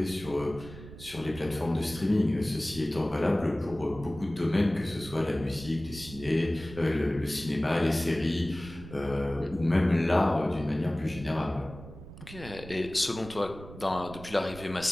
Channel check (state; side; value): noise; right; rumble, 15 dB below the sound